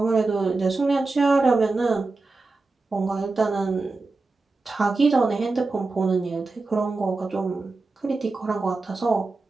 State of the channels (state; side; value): quieter; left; 3.6 dB